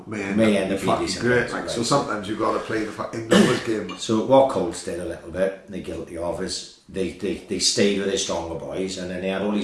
may end up fucking great. Like, so sometimes you've got to play the fucking numbers game. So what Colts did a little bit, they're guilty of, is they stayed with their stronger boys, and then they had all these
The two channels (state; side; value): identical; both; correlation 1.00